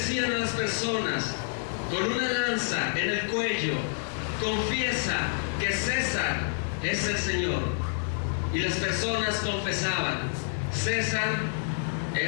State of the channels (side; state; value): right; silent; 59 dB below the other